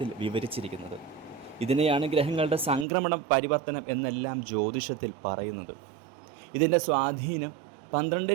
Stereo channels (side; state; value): left; drops out; at 2.9 s